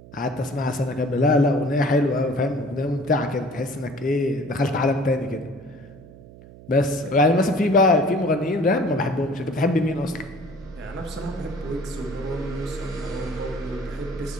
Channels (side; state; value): right; noise; hum, 19 dB below the sound